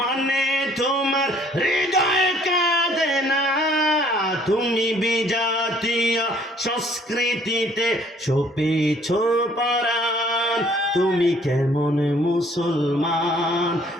তোমার হৃদয় কাঁদে না। তুমি বিজাতীয় সংস্কৃতিতে ছুপেছ পরাণ, তুমি কেমন মুসলমান,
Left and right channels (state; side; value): normal; both; correlation 0.59